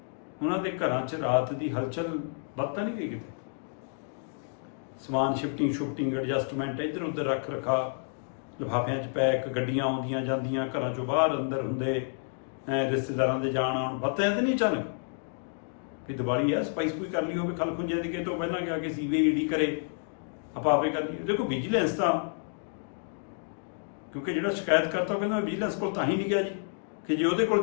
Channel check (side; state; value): right; silent; 58 dB below the other